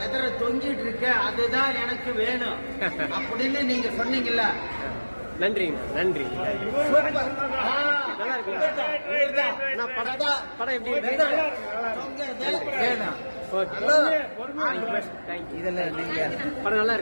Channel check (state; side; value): inverted; both; correlation -1.00